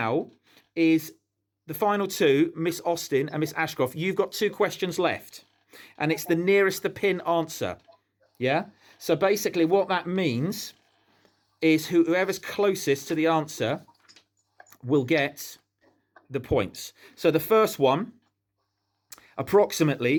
is the final 2, Miss Austin and Miss Ashcroft. You've got 2 questions left, and it's the nearest the pin answer. Yeah. So basically, what that means is whoever's closest to the answer will get the points. So the first one,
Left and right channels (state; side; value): identical; both; correlation 1.00